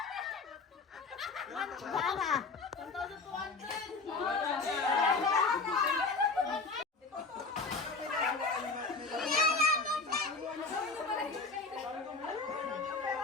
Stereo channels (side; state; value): right; quieter; 4.1 dB